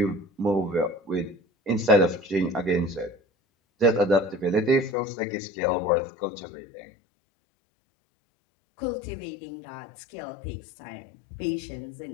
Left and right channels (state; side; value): drops out; right; at 5.0 s